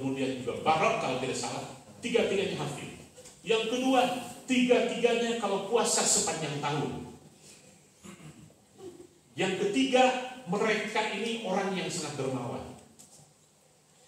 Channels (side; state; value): both; identical; correlation 1.00